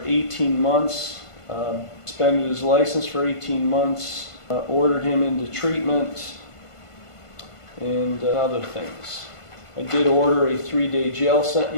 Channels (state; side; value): late; right; 1.5 ms